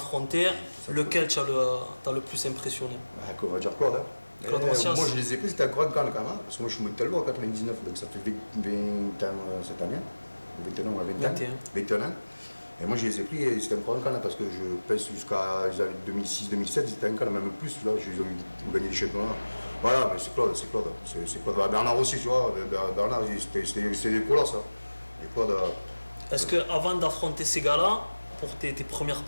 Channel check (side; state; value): both; inverted; correlation -1.00